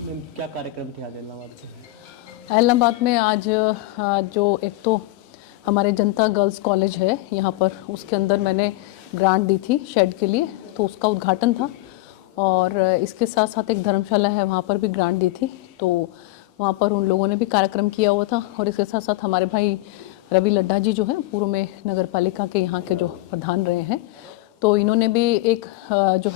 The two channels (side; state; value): right; quieter; 18.8 dB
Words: क्या कार्यक्रम थे आज इलाहाबाद के? इलाहाबाद में आज जो एक तो हमारे जनता गर्ल्स कॉलेज है यहाँ पर, उसके अंदर मैंने ग्रांट दी थी शेड के लिए, तो उसका उद्घाटन था। और इसके साथ साथ एक धर्मशाला है, वहाँ पर भी ग्रांट दी थी, तो वहाँ पर उन लोगों ने भी कार्यक्रम किया हुआ था। और इसके साथ साथ हमारे भाई रवि लड्ढा जी जो हैं पूर्व में नगर पालिका के यहाँ के जो प्रधान रहे हैं, तो इन्होंने भी एक जो